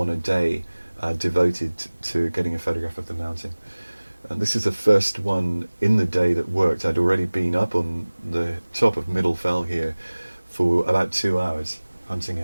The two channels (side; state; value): both; inverted; correlation -1.00